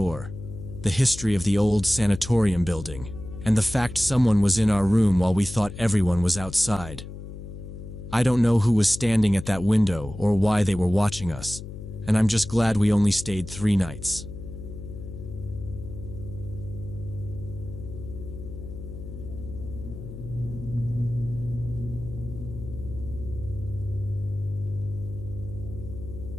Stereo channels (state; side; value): noise; left; hum, 11 dB below the sound